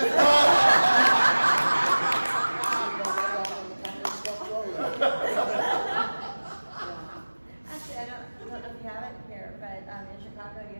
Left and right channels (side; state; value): both; inverted; correlation -1.00